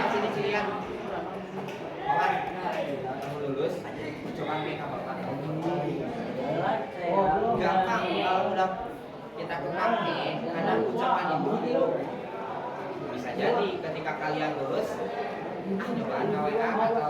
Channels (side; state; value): both; identical; correlation 1.00